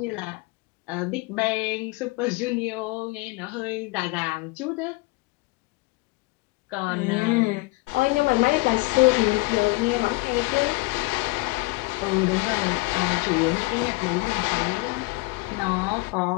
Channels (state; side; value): quieter; right; 23.8 dB